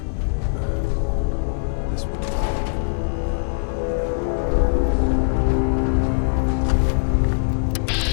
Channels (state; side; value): silent; right; digital silence